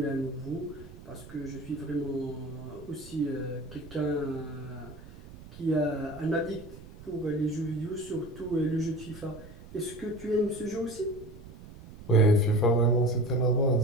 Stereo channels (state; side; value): noise; right; rumble, 17 dB below the sound